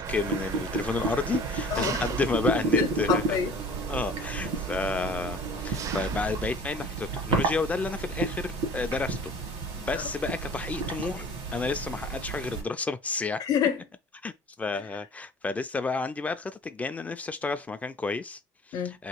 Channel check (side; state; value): both; normal; correlation 0.46